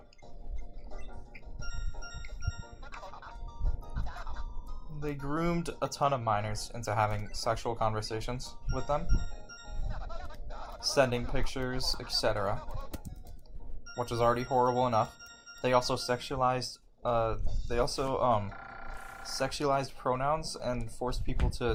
They groomed a ton of minors into having sexual conversations with them, sending pictures, etc., which is already horrible enough. They also sexualized pronouns and forced people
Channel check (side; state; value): both; identical; correlation 1.00